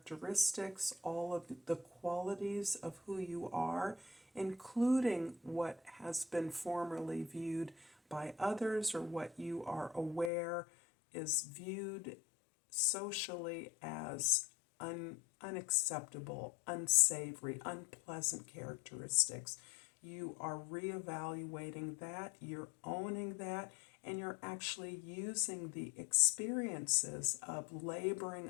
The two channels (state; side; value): drops out; right; at 10.3 s